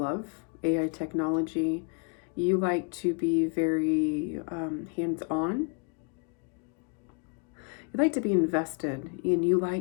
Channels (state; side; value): quieter; right; 36.7 dB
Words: AI technology. You like to be very hands-on. You like to be invested, and you